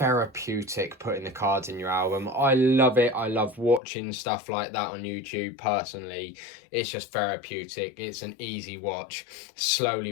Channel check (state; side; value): drops out; right; at 3.8 s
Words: putting the cards in your album. I love it. I love watching stuff like that on YouTube personally. It's just therapeutic. It's an easy watch. Slowly